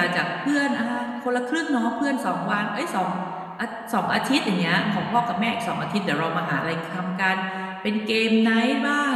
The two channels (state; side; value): identical; both; correlation 1.00